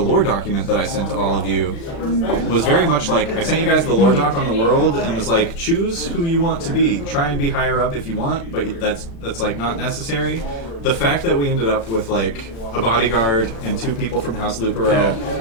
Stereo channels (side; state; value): right; late; 35 ms